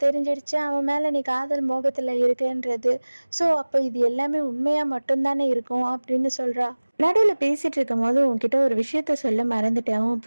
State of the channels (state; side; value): inverted; both; correlation -1.00